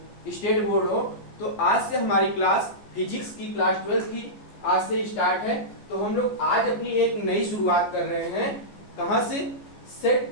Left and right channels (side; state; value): right; late; 14 ms